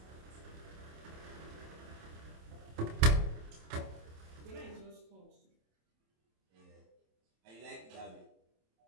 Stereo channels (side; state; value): left; late; 27 ms